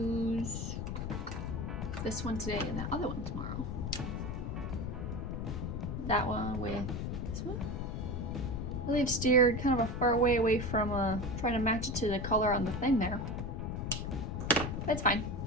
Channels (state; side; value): noise; left; rumble, 3 dB below the sound